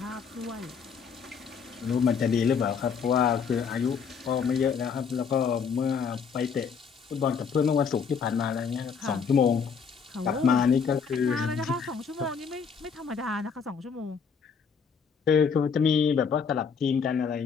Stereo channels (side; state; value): right; quieter; 6.2 dB